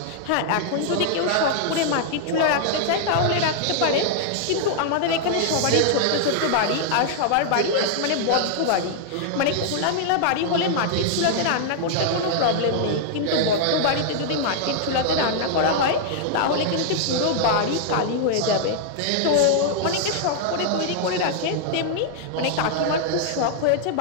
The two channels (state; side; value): different; both; correlation -0.01